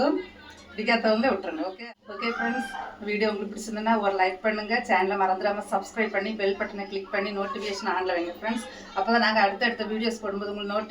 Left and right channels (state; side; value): identical; both; correlation 1.00